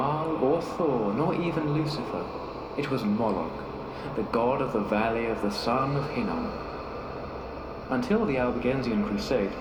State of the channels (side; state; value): both; identical; correlation 1.00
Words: or Thor, nor even Lucifer. It was Moloch, the god of the valley of the son of Hinnom. Until the Albigensian Crusade,